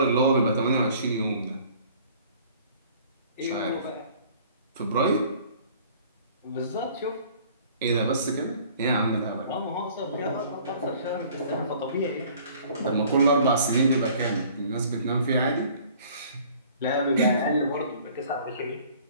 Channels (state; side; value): inverted; both; correlation -0.53